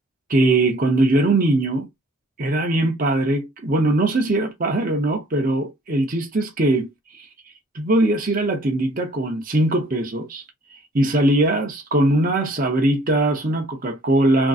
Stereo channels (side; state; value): both; normal; correlation 0.57